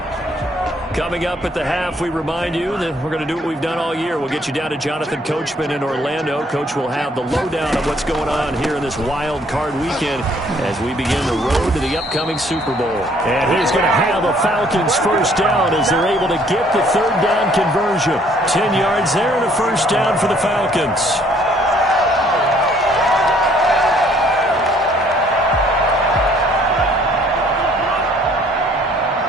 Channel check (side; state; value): both; normal; correlation 0.62